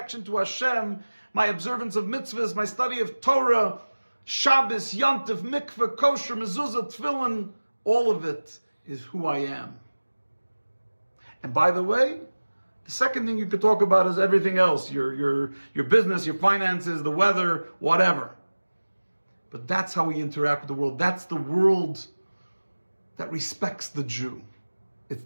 to Hashem, my observance of mitzvahs, my study of Torah, Shabbos, Yantif, Mikveh, Kosher, Mezuzah, Tefillin, all of it is who I am. And by the way, the second thing you could talk about is everything else, your business, your finances, the weather, whatever. But that's how we interact with the world. That's the world that respects the Jew. It's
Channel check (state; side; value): inverted; both; correlation -1.00